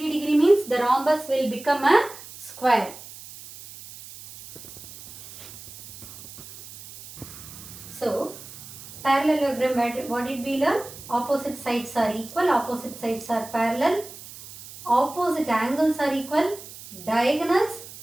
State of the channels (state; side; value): noise; right; hiss, 16 dB below the sound